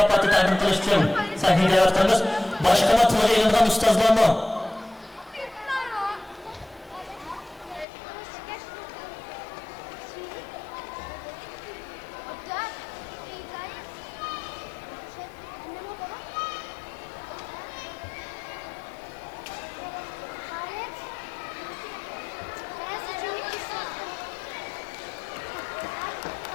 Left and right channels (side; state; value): right; drops out; at 7.9 s